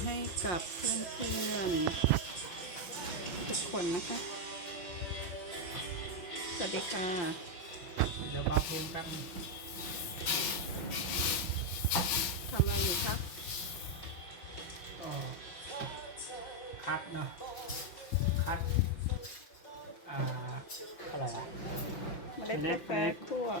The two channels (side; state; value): right; late; 5.6 ms